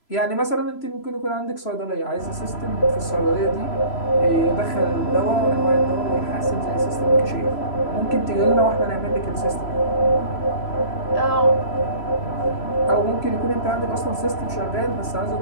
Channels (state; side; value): late; right; 3.0 ms